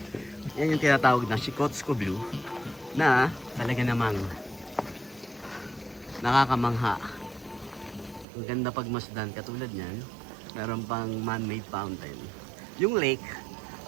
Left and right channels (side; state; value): left; drops out; at 8.2 s